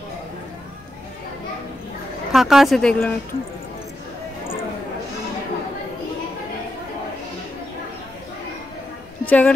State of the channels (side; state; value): both; normal; correlation 0.85